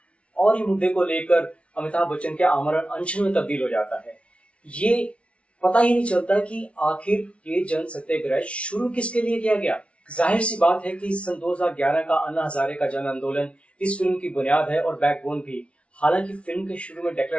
और ही मुद्दे को लेकर अमिताभ बच्चन के आमरण अनशन में तब्दील हो जाता है। ये पता ही नहीं चलता कि आखिर ये जन सत्याग्रह शुरू किसके लिए किया गया। जाहिर सी बात है कि सन 2011 का अन्ना हजारे का जन आंदोलन इस फिल्म की बुनियाद है और बैकबोन भी। हालांकि फिल्म के शुरू में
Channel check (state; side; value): late; right; 0.061 ms